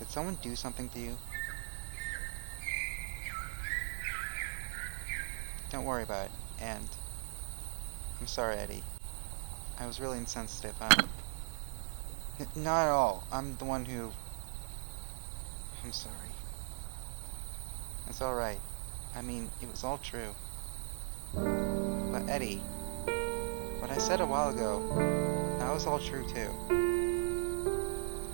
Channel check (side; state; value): left; silent; digital silence